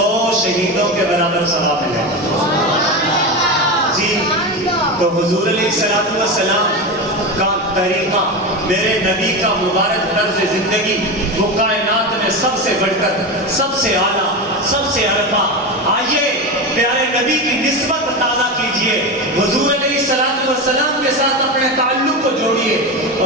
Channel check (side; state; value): both; normal; correlation 0.20